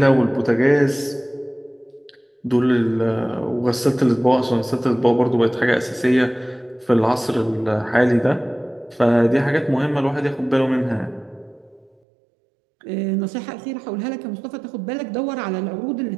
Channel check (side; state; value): left; drops out; at 11.9 s